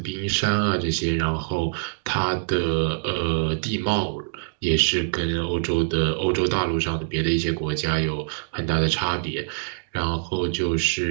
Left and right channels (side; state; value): left; silent; digital silence